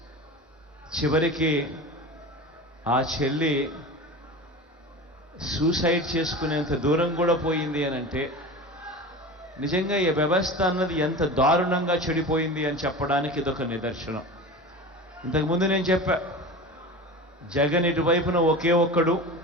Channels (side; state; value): both; normal; correlation 0.32